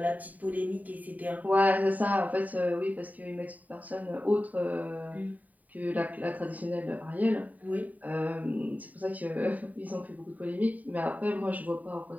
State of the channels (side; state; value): left; late; 0.075 ms